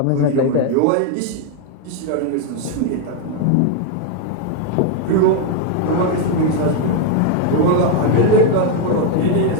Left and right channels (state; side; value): different; both; correlation 0.01